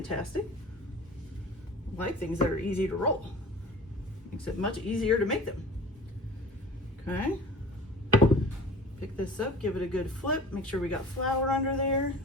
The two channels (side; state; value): both; normal; correlation 0.40